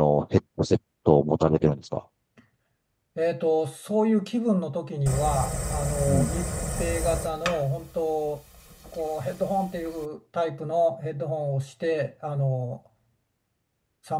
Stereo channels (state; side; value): identical; both; correlation 1.00